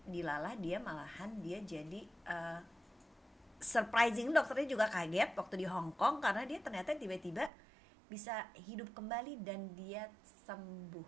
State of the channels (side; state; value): left; drops out; at 7.5 s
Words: dilalah dia malahan dia jadi surprising, dokternya juga kaget waktu di Hong Kong karena dia ternyata tiba-tiba bisa hidup kembali dan dia